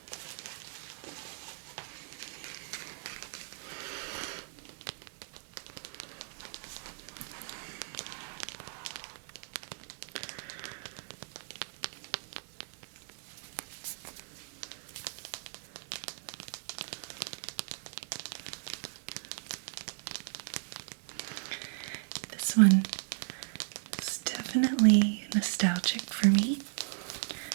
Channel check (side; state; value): left; silent; digital silence